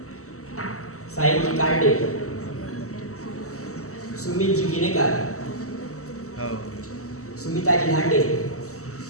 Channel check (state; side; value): late; right; 0.65 ms